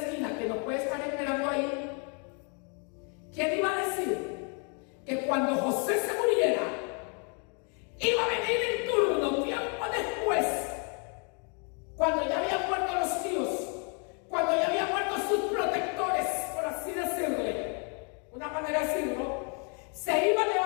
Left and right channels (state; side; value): quieter; right; 38.5 dB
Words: que nos puede estar esperando ahí, ¿quién iba a decir que cuando José se muriera, iba a venir en turno tiempo después, cuando ya habían muerto los tíos, cuando ya habían muerto sus protectores, por así decirle, una manera de decirlo, se iba a